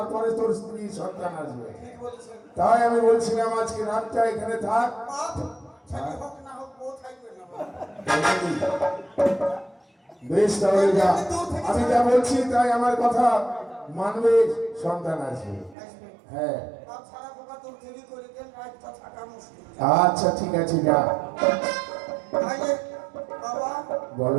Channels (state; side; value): drops out; left; at 15.8 s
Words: তোর স্ত্রী সন্তান আসবে। ঠিক বলেছেন। তাই আমি বলছিলাম আজকে রাতটা এখানে থাক। বাপ ছেলে হোক না হোক বউ থাকবে না বাবা। বেশ, তাহলে যা, আমি যা বলছি তাই আমার কথা মানবে, সন্তান আসবে। আসবে। হ্যাঁ, বাপ ছাড়া পোকা তোর দেরি করে দেন, রাতটা থাকা মুশকিল। আচ্ছা ঠিক আছে, যা। তাইলে বাবা